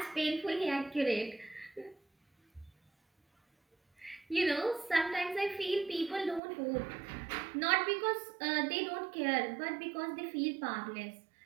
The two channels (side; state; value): left; drops out; at 6.4 s